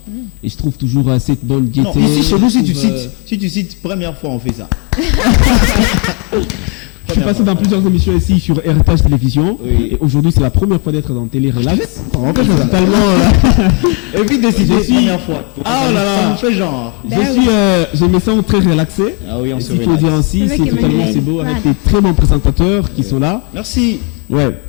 et je trouve toujours cette bonne gaieté. Non, ici chez nous, si tu cites première fois, on fait ça. Je suis passé dans plusieurs émissions ici sur Héritage Télévision et aujourd'hui c'est la première fois d'être dans Télé Relax. On fait ça. Évite de citer première fois. Ah oh là là. On fait genre. Je me sens très relaxé. Ah oui, on se relaxe. Il faut dire ainsi, c'est totalement c'est beau avec des très bons présentateurs qui sont là. Merci. Ouais.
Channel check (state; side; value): quieter; right; 35.3 dB